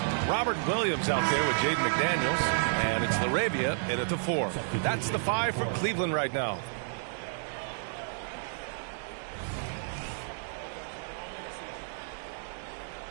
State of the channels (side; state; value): left; silent; digital silence